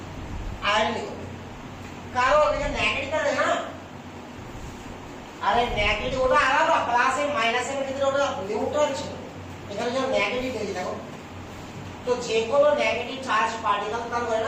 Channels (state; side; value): identical; both; correlation 1.00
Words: আয়োডিন করবে। কারণ এটা নেগেটিভ আছে না। আরে নেগেটিভ ওটা আলাদা, প্লাস এর মাইনাস এর ভিতরে ওটা নিউট্রাল ছিল, এখানে যখন নেগেটিভ দিয়েছি দেখো। তো যে কোনো নেগেটিভ চার্জ পার্টিকেল তার হয়